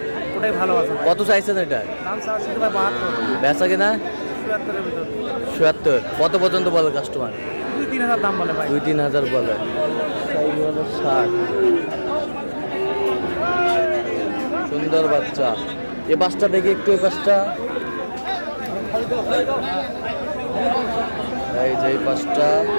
ওটাই ভালো আছে ভাই। কত চাইছেন এটা? দাম চাচ্ছি ভাই 72, বেচা কিনা 77 এর ভিতর। 77। কত পর্যন্ত বলে কাস্টমার? 2-3 হাজার দাম বলে ভাই। 2-3 হাজার বলে। ষাট সুন্দর বাচ্চা। এ পাঁচটা দেখি একটু, এই পাঁচটা, এই যে এই পাঁচটা।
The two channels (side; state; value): both; inverted; correlation -1.00